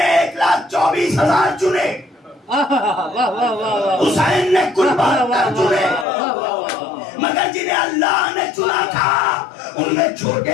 1,24,000 चुने, हुसैन ने कुल 72 चुने। मगर जिन्हें अल्लाह ने चुना था उनमें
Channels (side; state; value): right; drops out; at 6.1 s